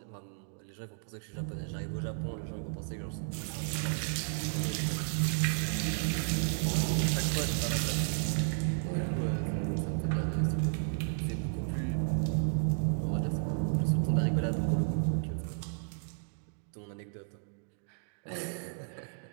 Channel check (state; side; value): silent; left; digital silence